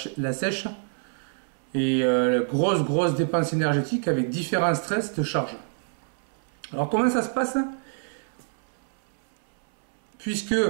sèche et grosse dépense énergétique avec différents stress de charge. Alors comment ça se passe? Puisque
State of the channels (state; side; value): silent; left; 61 dB below the other